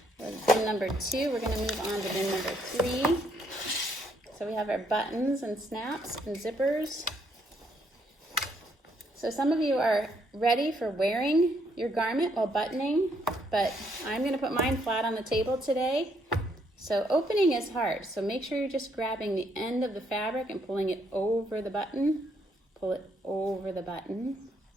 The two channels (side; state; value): both; normal; correlation 0.71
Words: with bin number 2. We're going to move on to bin number 3. So we have our buttons and snaps and zippers. So some of you are ready for wearing your garment while buttoning, but I'm going to put mine flat on the table today. So opening is hard, so make sure you're just grabbing the end of the fabric and pulling it over the button. Pull it over the button,